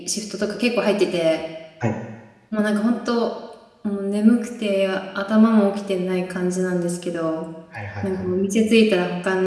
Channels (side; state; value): both; identical; correlation 1.00